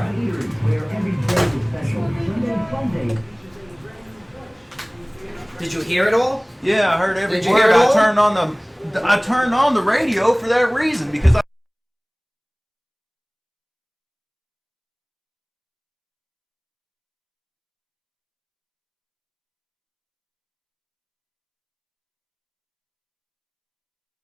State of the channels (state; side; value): identical; both; correlation 1.00